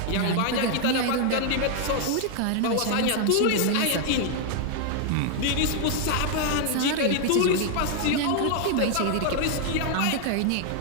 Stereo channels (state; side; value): different; both; correlation 0.00